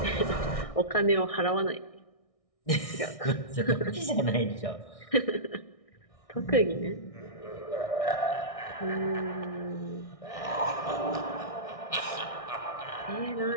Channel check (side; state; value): right; late; 1.6 ms